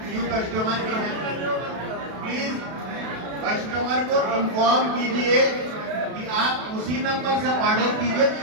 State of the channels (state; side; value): late; left; 32 ms